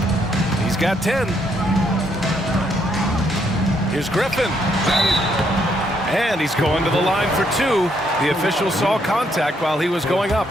He's got 10. Here's Griffin. And he's going to the line for 2. The official saw contact while he was going up.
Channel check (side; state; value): both; normal; correlation 0.73